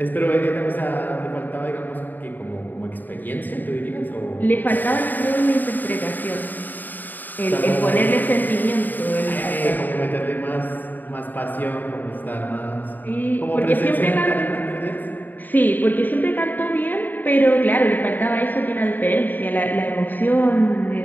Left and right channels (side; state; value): right; late; 0.088 ms